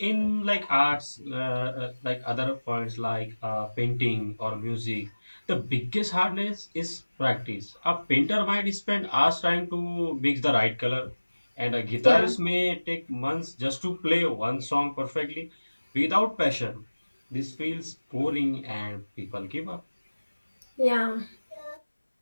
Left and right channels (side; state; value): both; inverted; correlation -1.00